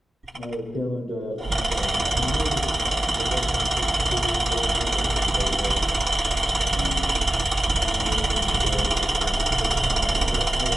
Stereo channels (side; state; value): both; normal; correlation 0.94